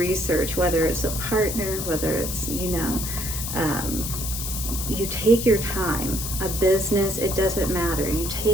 whether it's a partner, whether it's, you know, you take your time. A business, it doesn't matter. You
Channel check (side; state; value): left; noise; hiss, 5 dB below the sound